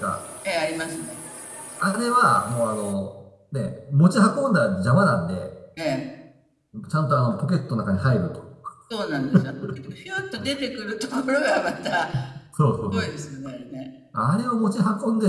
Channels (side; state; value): both; identical; correlation 1.00